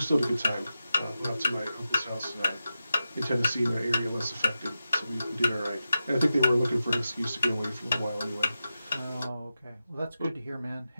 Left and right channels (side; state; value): both; inverted; correlation -0.91